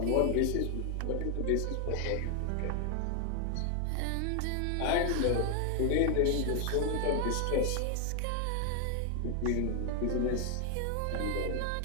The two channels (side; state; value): both; different; correlation 0.00